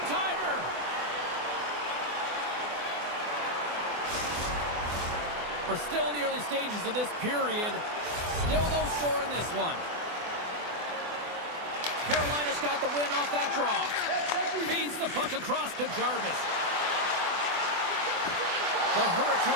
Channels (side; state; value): left; late; 24 ms